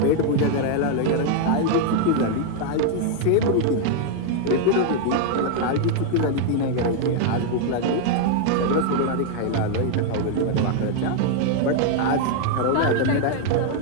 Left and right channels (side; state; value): both; different; correlation 0.00